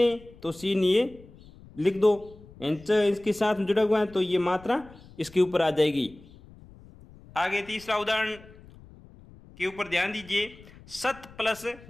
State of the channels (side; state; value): left; noise; rumble, 22 dB below the sound